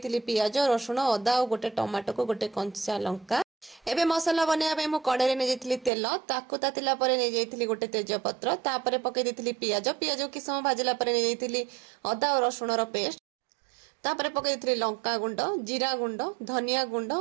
पियाज, रसुण, अदा और गोटे टमाटो को गोटे कंचा लंका। एबे मसला बनेबा पई मु कड़ाई रे नै जेथिली तेल, ताकु तातिला परे नै जेथिली गोटे तेजपत्र, तापरे पकई देथिली पियाज। पियाज कि समय भाजिला परे नै जेथिली अदा और रसुण रो पेस्ट। तापरे पकई देथिली लंका गुंड, जीरा गुंड, धनिया गुंड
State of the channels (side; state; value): left; drops out; at 5.9 s